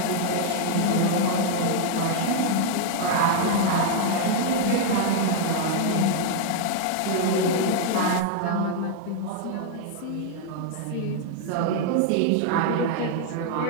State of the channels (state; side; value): different; both; correlation 0.00